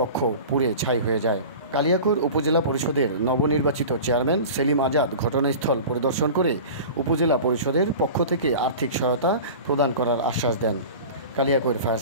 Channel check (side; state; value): both; inverted; correlation -0.36